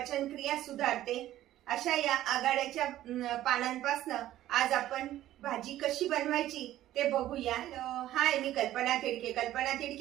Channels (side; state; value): left; quieter; 13.7 dB